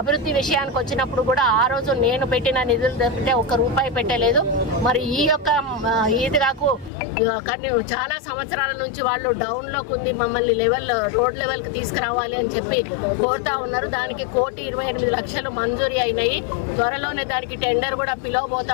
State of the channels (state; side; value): drops out; right; at 6.9 s